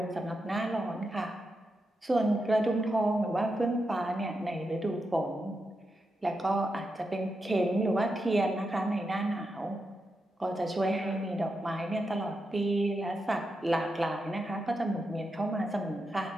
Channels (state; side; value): normal; both; correlation 0.87